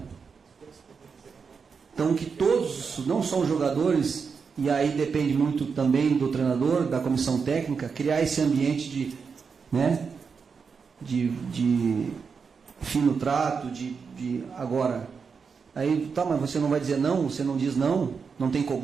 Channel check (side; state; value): left; quieter; 5.6 dB